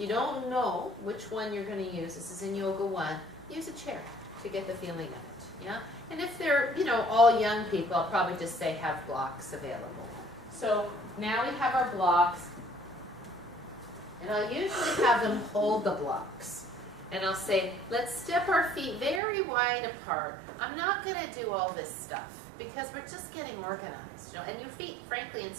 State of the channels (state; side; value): drops out; left; at 19.2 s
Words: don't know which one you're going to use, this is in Yoga 1, use a chair to get the feeling of it, yeah? And if they're, all young people, I'll probably just say have blocks available. So now we have our blocks, and I'll usually have them hold the blocks. And I'll say, let's step our feet very wide apart. I'm not going to do all this stuff because we're just getting organized. And your feet, frankly, in